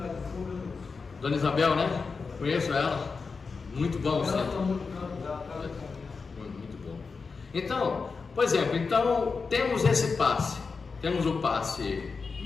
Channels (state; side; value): quieter; right; 4.7 dB